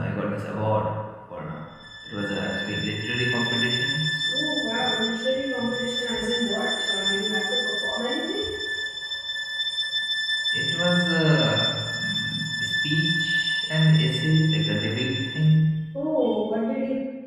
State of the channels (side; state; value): both; identical; correlation 1.00